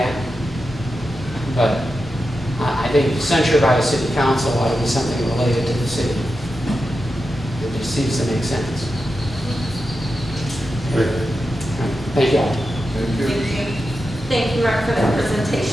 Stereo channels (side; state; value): both; normal; correlation 0.90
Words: but I think censure by a city council ought to be something related to the city. It just seems to make sense. Thank you all. Thank you. Thank you. Thank you, Mark, for that